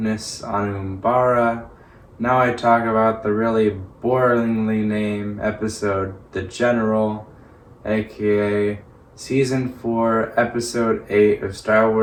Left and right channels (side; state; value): both; identical; correlation 1.00